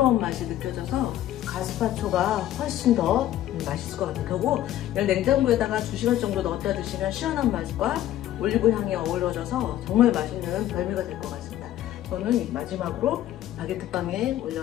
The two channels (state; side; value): quieter; right; 12.8 dB